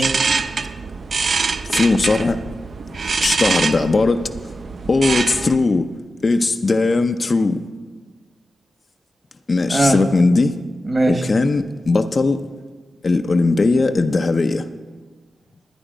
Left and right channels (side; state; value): both; normal; correlation 0.92